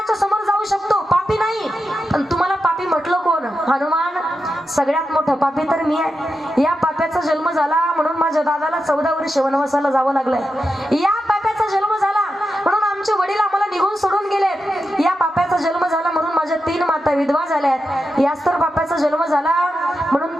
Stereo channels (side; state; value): both; normal; correlation 0.89